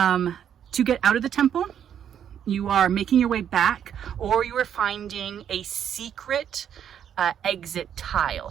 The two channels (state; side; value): quieter; left; 9.1 dB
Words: get out of the temple, you are making your way back, or you are finding a secret exit